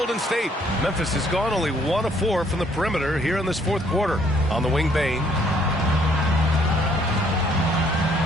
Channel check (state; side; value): normal; both; correlation 0.65